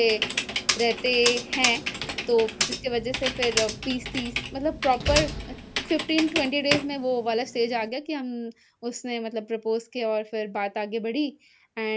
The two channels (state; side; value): identical; both; correlation 1.00